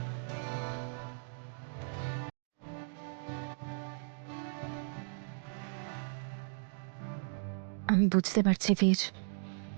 আমি বুঝতে পারছি বীর,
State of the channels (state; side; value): silent; left; digital silence